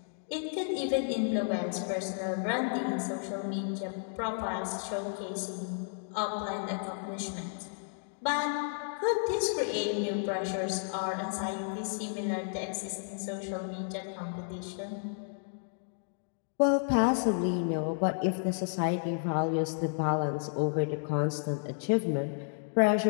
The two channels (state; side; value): silent; right; digital silence